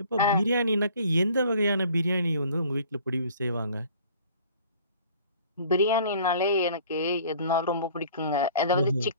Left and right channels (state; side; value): inverted; both; correlation -0.51